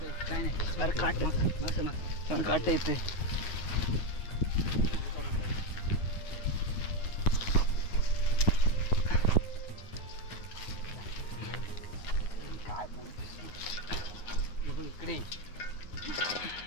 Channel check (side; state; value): right; late; 9.9 ms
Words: काय नाही अरे काट काट येते. इकडे